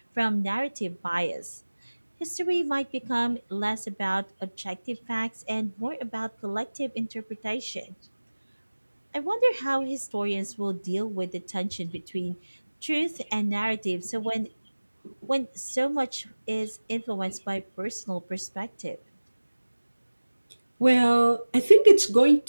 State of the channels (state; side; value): inverted; both; correlation -1.00